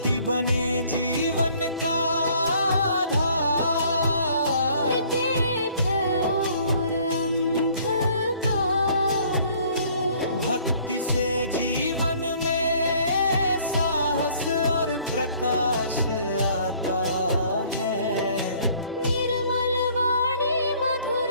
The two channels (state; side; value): inverted; both; correlation -0.58